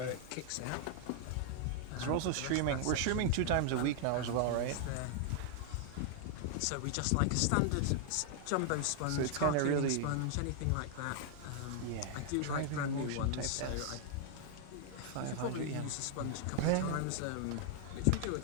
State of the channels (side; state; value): both; different; correlation 0.00